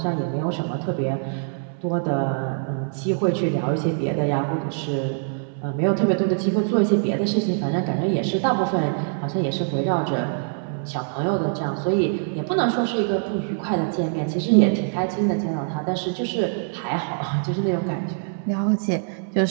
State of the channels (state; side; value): silent; left; digital silence